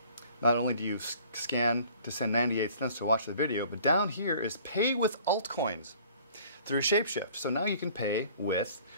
not only do you scan to send 98 cents to watch the video, but down here is pay with altcoins through Shapeshift. So now you can pay with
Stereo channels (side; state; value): both; inverted; correlation -0.53